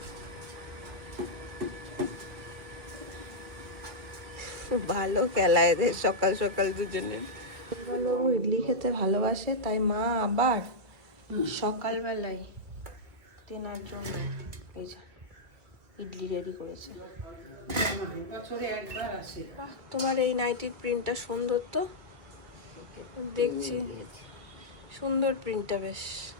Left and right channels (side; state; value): left; late; 2.2 ms